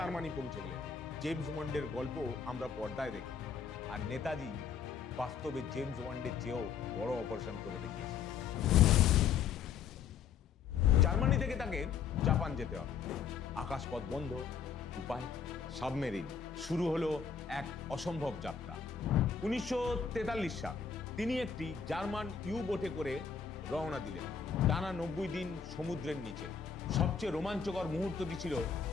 পৌঁছে গেলেন। জেমস বন্ডের গল্প আমরা পর্দায় দেখি, আর নেতাজি বাস্তবে জেমস বন্ডের চেয়েও বড় অপারেশন করে দেখিয়েছিলেন। জার্মানি থেকে তাকে জাপান যেতে হবে। আকাশপথ বন্ধ, উপায় সাবমেরিন। শুরু হলো এক অসম্ভব যাত্রা। 1943 সাল, তিনি একটি জার্মান ইউ বোটে করে রওনা দিলেন। টানা 90 দিন সমুদ্রের নিচে। সবচেয়ে রোমাঞ্চকর মুহূর্তটি ছিল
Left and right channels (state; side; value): quieter; right; 6.6 dB